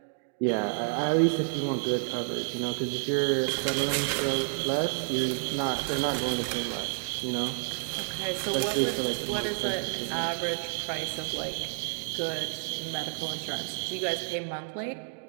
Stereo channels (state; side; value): silent; left; digital silence